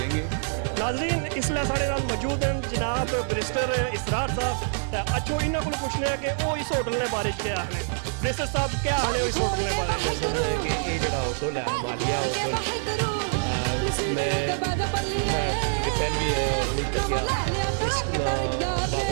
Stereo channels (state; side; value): silent; left; 61 dB below the other